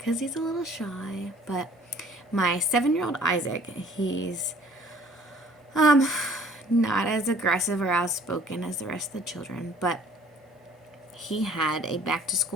he's a little shy. But my 7-year-old Isaac, he's not as aggressive or outspoken as the rest of the children, but he had a back to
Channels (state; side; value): normal; both; correlation 0.54